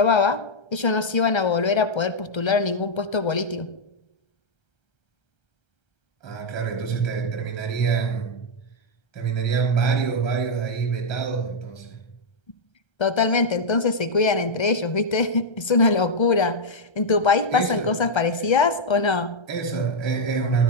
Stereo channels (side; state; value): right; late; 1.3 ms